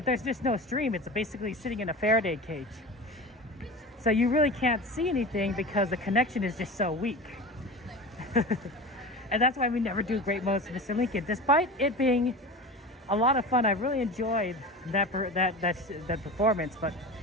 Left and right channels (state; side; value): normal; both; correlation 0.31